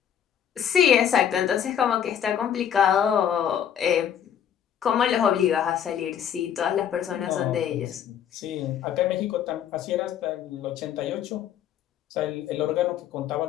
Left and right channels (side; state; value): right; quieter; 9.2 dB